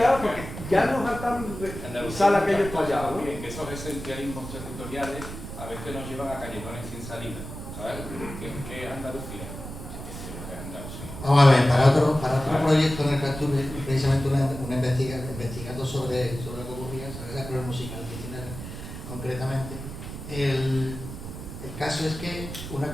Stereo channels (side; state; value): right; noise; rumble, 10 dB below the sound